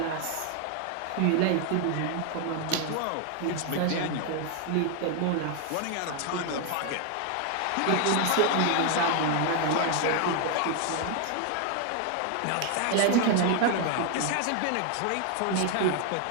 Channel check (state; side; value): different; both; correlation 0.00